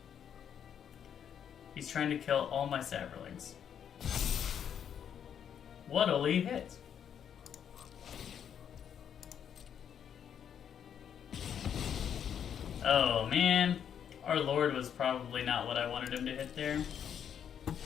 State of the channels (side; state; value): right; quieter; 8.5 dB